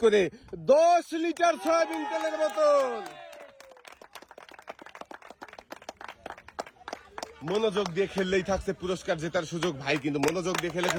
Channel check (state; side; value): identical; both; correlation 1.00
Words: করে 10 লিটার সয়াবিন তেলের বোতল। মনোযোগ দিয়ে খেললেই থাকছে পুরস্কার জেতার সুযোগ। ভাই কিন্তু মনোযোগ দিয়ে